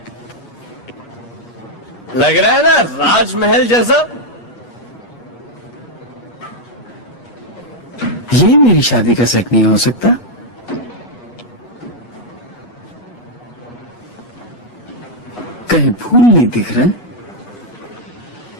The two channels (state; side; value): late; right; 8.4 ms